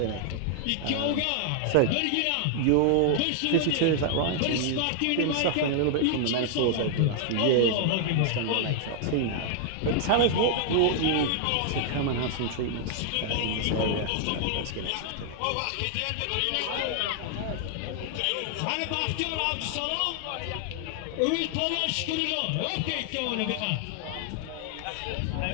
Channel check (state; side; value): different; both; correlation 0.00